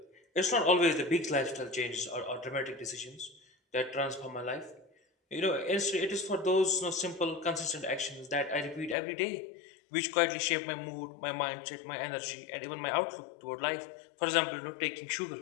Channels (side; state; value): right; drops out; at 9.0 s